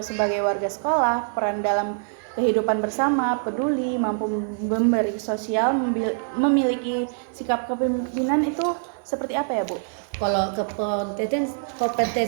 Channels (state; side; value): silent; left; 56 dB below the other